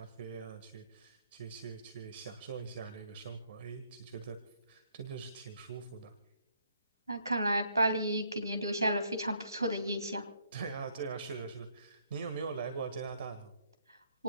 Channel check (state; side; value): inverted; both; correlation -0.68